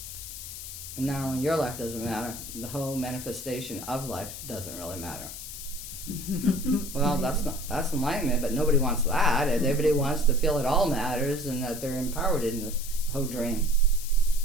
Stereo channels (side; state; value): left; noise; hiss, 10 dB below the sound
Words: And not only your life doesn't matter, the whole manifestation of life doesn't really matter. Well, that's enlightenment, but nobody wants that. Everybody wants to feel it all matters and that they're empowered in the whole dream.